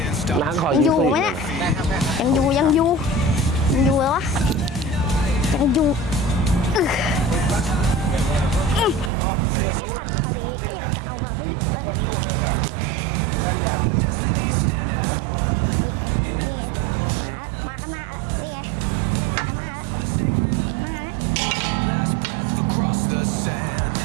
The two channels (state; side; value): drops out; left; at 9.1 s